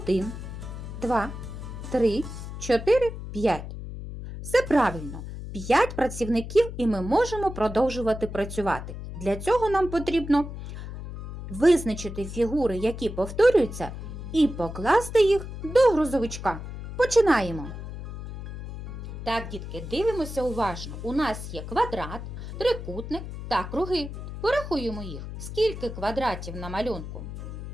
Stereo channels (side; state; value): left; noise; hum, 9 dB below the sound